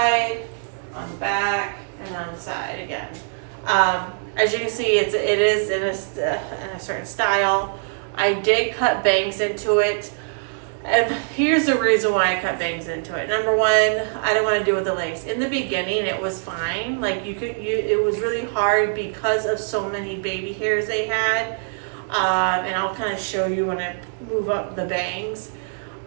on the back, and on the side again. As you can see, it is in a certain style. I did cut bangs into it. And here's the reason why I cut bangs into it. Number one, I don't want to deal with the lace. In the beginning, it was fine. Like it was really hard because of so many baby hairs they had. And I'll kind of show you when I move up the bangs.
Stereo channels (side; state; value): left; silent; digital silence